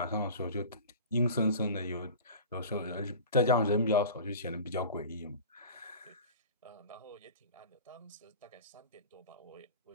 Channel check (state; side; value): inverted; both; correlation -0.37